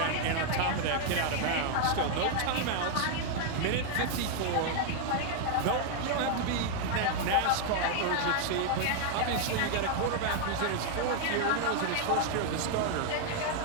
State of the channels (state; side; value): different; both; correlation 0.00